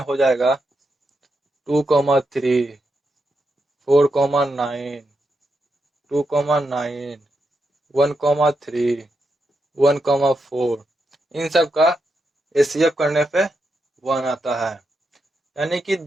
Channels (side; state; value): both; normal; correlation 0.84